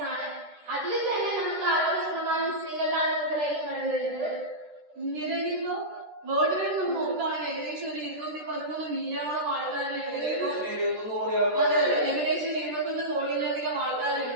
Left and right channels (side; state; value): left; late; 13 ms